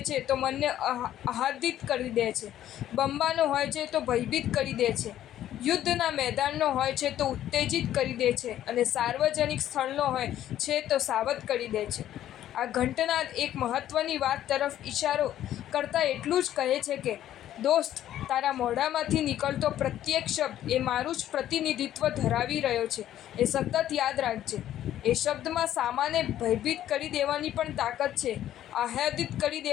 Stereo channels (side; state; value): right; quieter; 12.1 dB